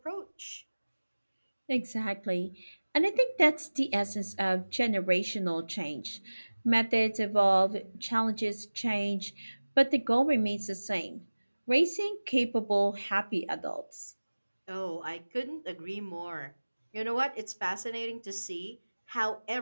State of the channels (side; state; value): both; inverted; correlation -1.00